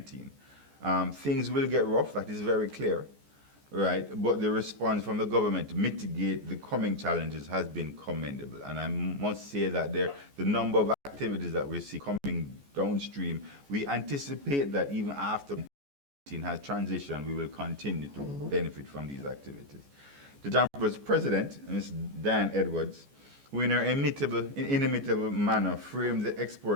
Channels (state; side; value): late; left; 14 ms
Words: Things will get rough, that is very clear, right? But the response from the government to mitigate the coming challenges has been commendable. And I must say that the number of activities that we see coming downstream, we anticipate that even after COVID-19 has transitioned, we will continue to benefit from these activities. The JAMPRO's president, Ms. Diane Edwards, who in her inimitable manner framed the